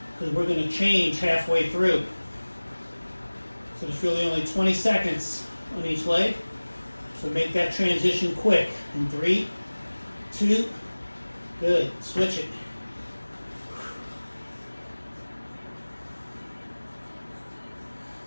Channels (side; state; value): both; inverted; correlation -1.00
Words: because we're going to change halfway through. So there's really only 20 seconds on each leg. So make that transition quick. In 3, 2, good. Switch it.